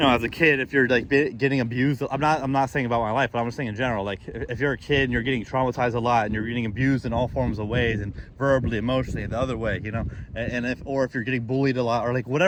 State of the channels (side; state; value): both; identical; correlation 1.00